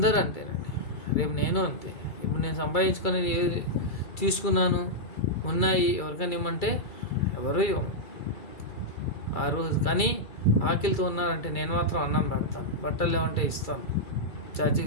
అంతేనండి. రేపు నేను అంతే. ఇప్పుడు నేను సంపాదించుకొని తీసుకున్నాను, ఉన్నాయి, ఎవరికైనా ఇవ్వమంటే ఎవరు ఇవ్వము ఆ రోజు. కానీ ఆకలితో ఉన్నారంటే నేను మాత్రం అన్నం పెడతాను, బట్టలు లేవంటే ఇస్తాను,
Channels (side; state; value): right; late; 2.3 ms